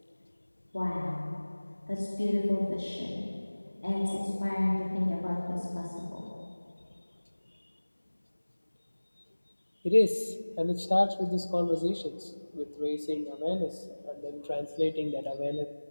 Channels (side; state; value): both; inverted; correlation -1.00